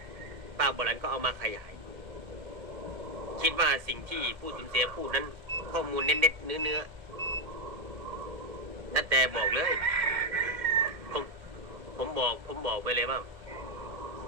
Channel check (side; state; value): left; late; 1.8 ms